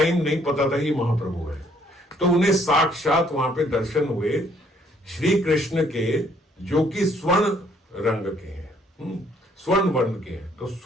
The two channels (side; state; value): both; normal; correlation 0.65